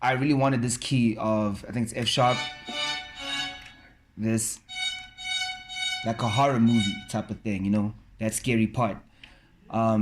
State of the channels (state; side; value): identical; both; correlation 1.00